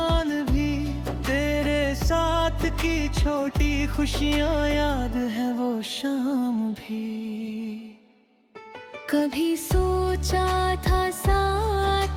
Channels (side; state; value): both; identical; correlation 1.00